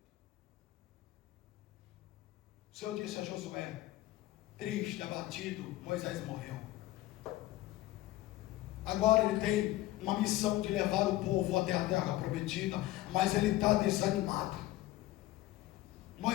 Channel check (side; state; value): right; quieter; 16.6 dB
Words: O Senhor disse a Josué, triste, abatido: Moisés morreu. Agora ele tem uma missão de levar o povo até a terra prometida, mas ele está desanimado.